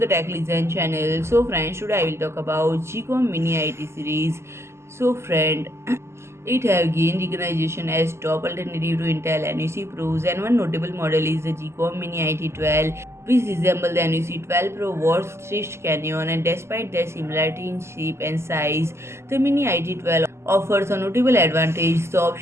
Tech Listen channel. So friends, today I will talk about GEEKOM Mini IT series. So friend, it have gained recognition as top alternative to Intel NUC Pros, and one notable model is the GEEKOM Mini IT12, which resemble the NUC 12 Pro Wars stitched canyon, and despite their similarity in shape and size, the Mini IT12 offers a notable advantage: the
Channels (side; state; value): left; late; 0.13 ms